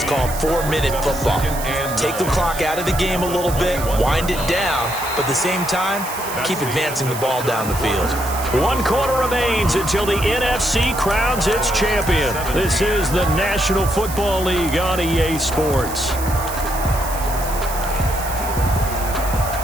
call 4-minute football. Take the clock out of the game a little bit, wind it down, but at the same time, keep advancing the ball down the field. 1 quarter remains until the NFC crowns its champion. This is the National Football League on EA Sports.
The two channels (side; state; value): right; noise; hiss, 10 dB below the sound